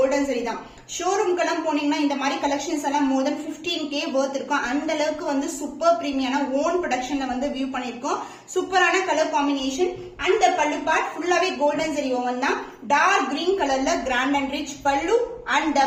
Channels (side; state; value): both; identical; correlation 1.00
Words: ஜரி தான். ஷோரூம்க்கெல்லாம் போனீங்கன்னா இந்த மாதிரி கலெக்ஷன்ஸ் எல்லாம் more than 15k worth இருக்கும். அந்த அளவுக்கு வந்து சூப்பர் பிரீமியமான ஓன் ப்ரொடக்ஷன்ல வந்து வியூ பண்ணிருக்கோம். சூப்பரான colour combination. And pallu part ஃபுல்லாவே கோல்டன் ஜரி ஓவன் தான். டார்க் கிரீன் கலர்ல grand and rich pallu. And